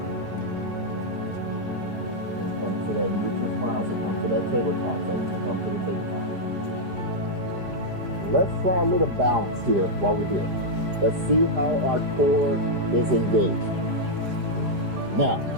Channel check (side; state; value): left; late; 4.9 ms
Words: And come to that neutral spine, so come to that tabletop. So come to the tabletop. Let's try a little balance here while we're here. Let's see how our core is engaged. Now,